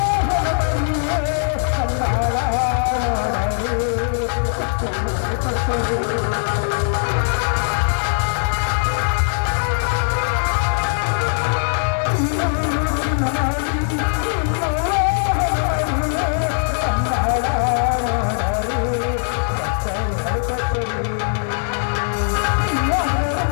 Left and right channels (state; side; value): silent; right; digital silence